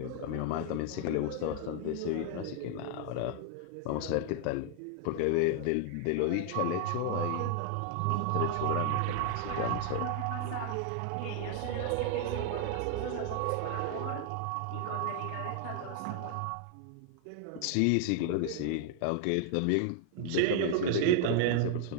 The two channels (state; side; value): different; both; correlation 0.00